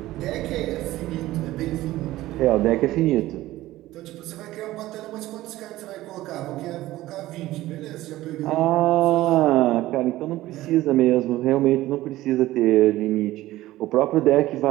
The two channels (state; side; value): quieter; left; 16.2 dB